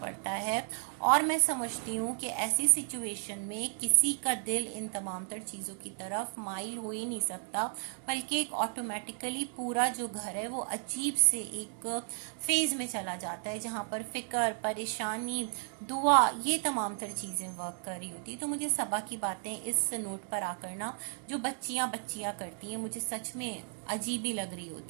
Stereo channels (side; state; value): left; silent; 55 dB below the other